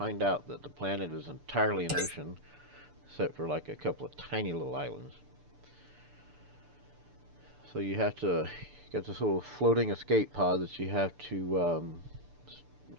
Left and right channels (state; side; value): late; left; 6.9 ms